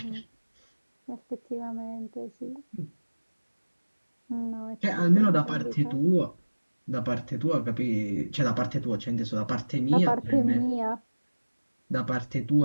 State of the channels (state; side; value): inverted; both; correlation -1.00